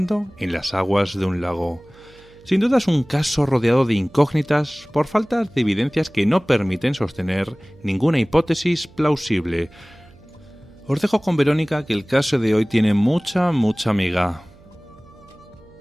en las aguas de un lago. Sin duda es un caso rodeado de incógnitas por falta de evidencias que no permiten sostener ninguna hipótesis plausible. Os dejo con Verónica, que el caso de hoy tiene mucha miga.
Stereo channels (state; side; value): noise; right; hum, 26 dB below the sound